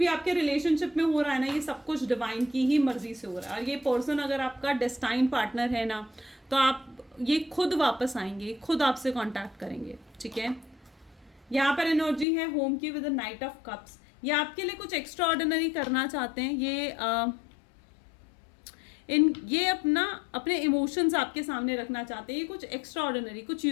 आपके रिलेशनशिप में हो रहा है ना, ये सब कुछ डिवाइन की ही मर्जी से हो रहा है। और ये पर्सन अगर आपका डेस्टाइन पार्टनर है ना, तो आप ये खुद वापस आएंगे, खुद आपसे कांटेक्ट करेंगे, ठीक है। यहाँ पर एनर्जी है होम की with the night of cups. ये आपके लिए कुछ एक्स्ट्रा ऑर्डिनरी करना चाहते हैं, ये अपने इमोशंस आपके सामने रखना चाहते हैं, ये कुछ एक्स्ट्रा ऑर्डिनरी, कुछ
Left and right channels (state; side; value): drops out; right; at 12.2 s